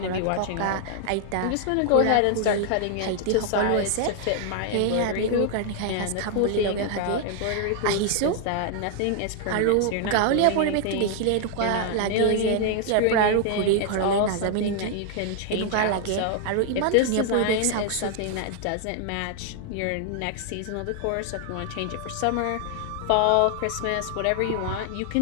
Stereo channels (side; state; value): both; different; correlation 0.00